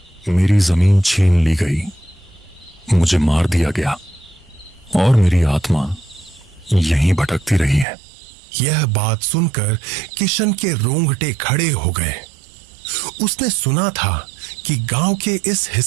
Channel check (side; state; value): left; drops out; at 7.9 s